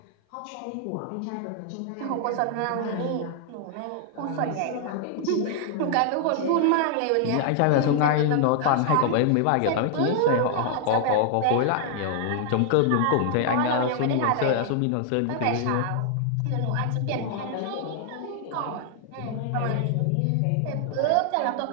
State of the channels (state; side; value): different; both; correlation 0.00